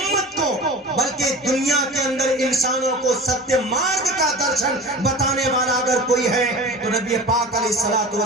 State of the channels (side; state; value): both; normal; correlation 0.35